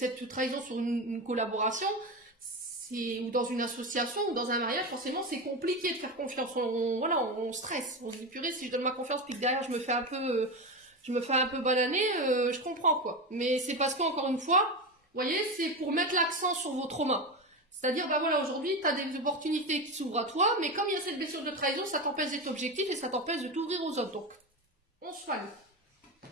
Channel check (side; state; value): both; normal; correlation 0.19